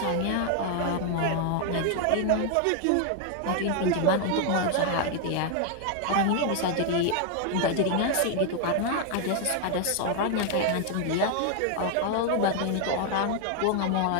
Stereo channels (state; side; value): different; both; correlation 0.00